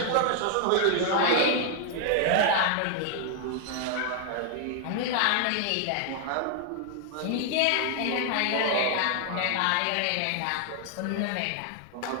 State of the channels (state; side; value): different; both; correlation 0.00